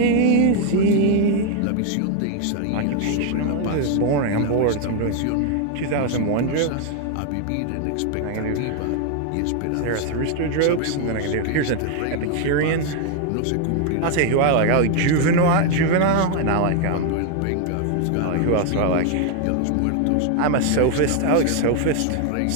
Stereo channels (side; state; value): both; different; correlation 0.00